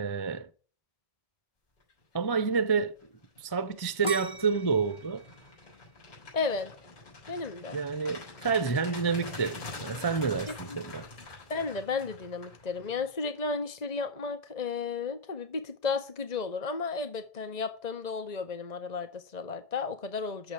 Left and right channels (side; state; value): right; late; 1.7 ms